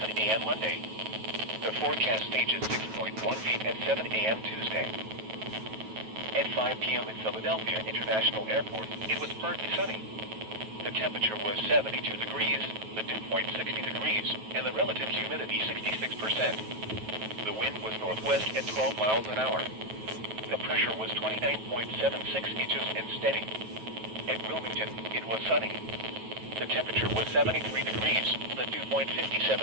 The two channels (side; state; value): left; late; 9.2 ms